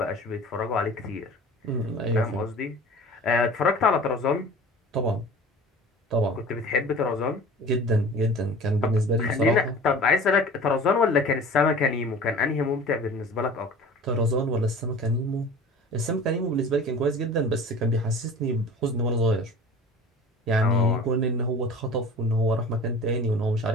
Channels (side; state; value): both; normal; correlation 0.41